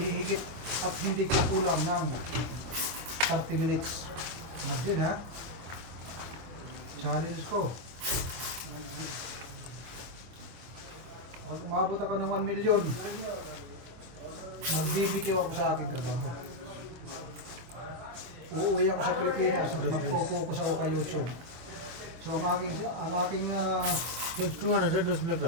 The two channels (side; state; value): left; late; 24 ms